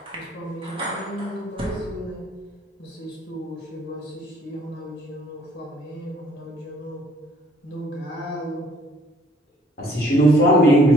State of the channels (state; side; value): normal; both; correlation 0.60